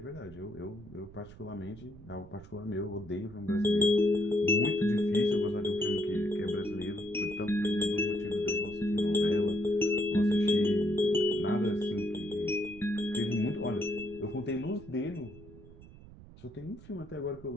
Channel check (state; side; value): noise; right; rumble, 19 dB below the sound